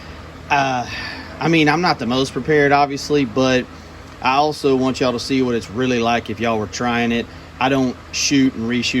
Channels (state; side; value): identical; both; correlation 1.00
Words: I mean, I'm not the most prepared, obviously, but I also want y'all to see what it's really like if y'all were trying it. I don't shoot and